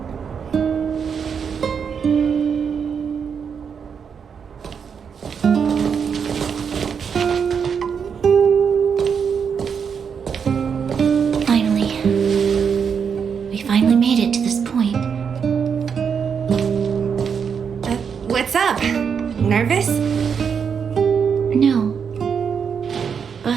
We finally made it to this point. What's up? Nervous? No.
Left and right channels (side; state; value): left; quieter; 6.7 dB